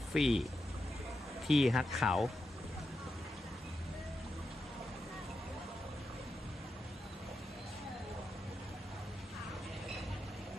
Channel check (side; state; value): both; normal; correlation 0.87